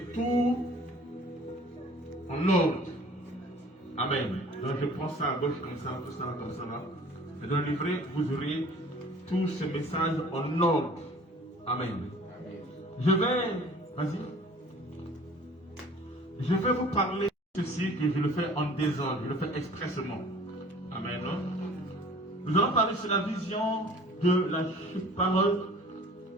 tout en ordre. Amen. Donc je prends ça à gauche comme ça, tout ça comme ça là. Et dans le livret, vous aurez tous ces messages en ordre. Amen. Vas-y. Je vais vous parler de ceci que je le fais en désordre, je le fais expressement. Amen. Nous allons parler sur la vision de la parole,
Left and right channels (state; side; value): normal; both; correlation 0.49